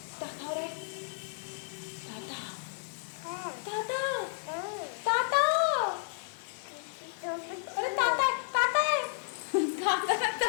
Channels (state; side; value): silent; right; 56 dB below the other